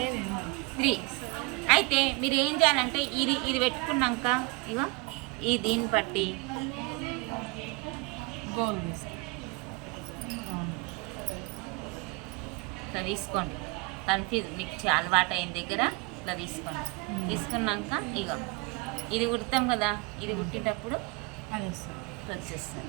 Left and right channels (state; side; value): quieter; left; 26.4 dB